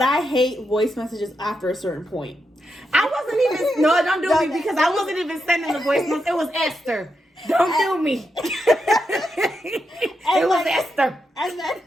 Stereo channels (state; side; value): normal; both; correlation 0.85